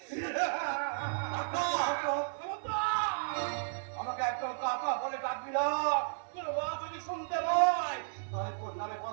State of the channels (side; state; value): left; silent; 55 dB below the other